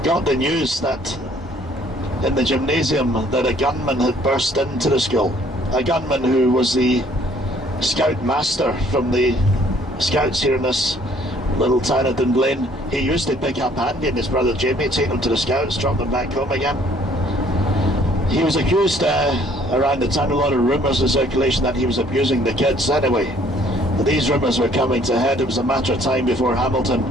Got the news that in the gymnasium that a gunman had burst into the school. A gunman who was the scout master from the scouts here in this little town of Dunblane. He used to pick up Andy and his brother Jamie, take them to the scouts, drop them back home again. He was accused around the town, a lot of rumours in circulation that he was abusing the kids anyway. But these rumours were coming to head. It was a matter of time before Hamilton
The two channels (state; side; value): normal; both; correlation 0.60